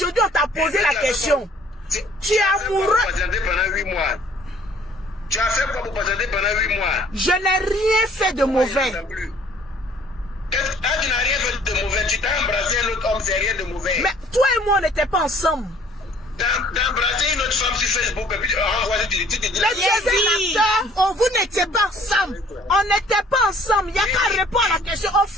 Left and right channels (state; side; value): normal; both; correlation 0.56